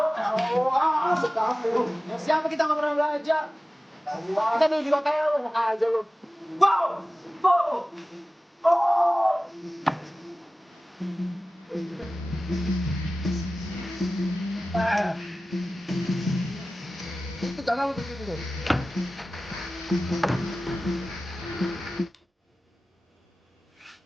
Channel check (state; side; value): normal; both; correlation 0.96